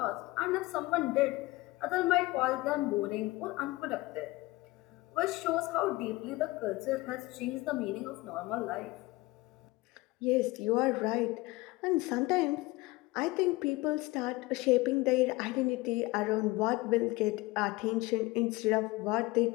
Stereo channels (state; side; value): quieter; right; 20.9 dB